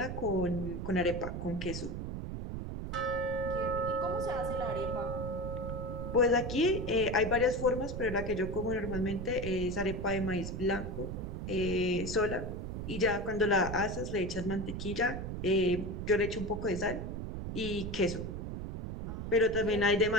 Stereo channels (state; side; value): noise; right; rumble, 5 dB below the sound